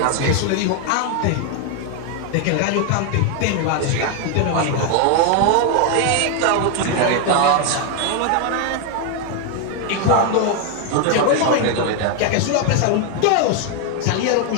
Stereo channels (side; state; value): both; different; correlation 0.01